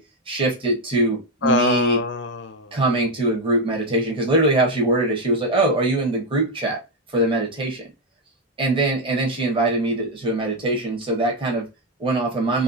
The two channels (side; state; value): both; normal; correlation 0.06